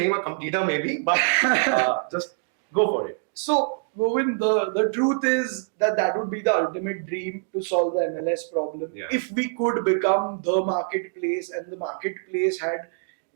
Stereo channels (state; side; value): silent; left; digital silence